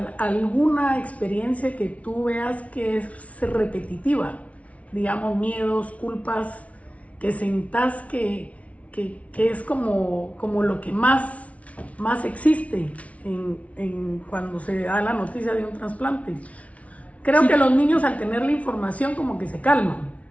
alguna experiencia que tú veas que es repetitiva? Digamos, miedos, culpas, que sentás que es como lo que más existe cuando se da la noticia de un trasplante. Creo que los niños al tener la información como que se calman.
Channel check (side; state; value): right; late; 0.066 ms